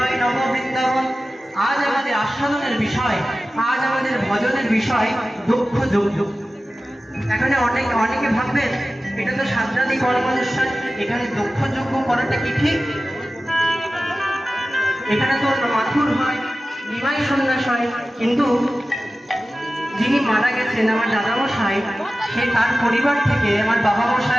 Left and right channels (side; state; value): both; normal; correlation 0.95